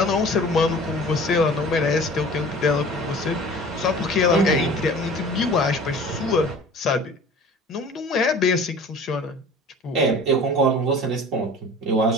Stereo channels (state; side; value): normal; both; correlation 0.43